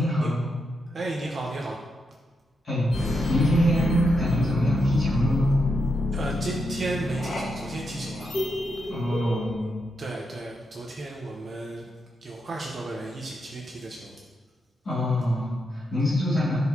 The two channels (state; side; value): normal; both; correlation 0.83